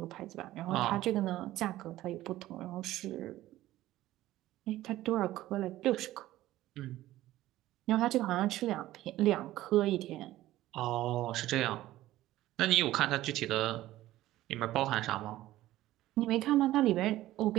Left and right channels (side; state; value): left; quieter; 15.3 dB